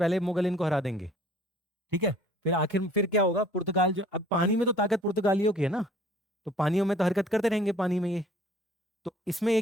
मुगल इनको हरा देंगे, ठीक है। फिर आखिर फिर क्या होगा, पुर्तगाल जो, अब पानी में तो ताकत पुर्तगालियों की है ना, तो पानियों में तो हरकत करते रहेंगे पानी में ये। तो इसमें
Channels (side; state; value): both; normal; correlation 0.53